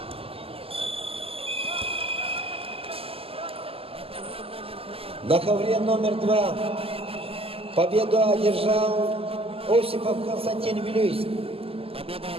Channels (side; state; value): left; late; 0.28 ms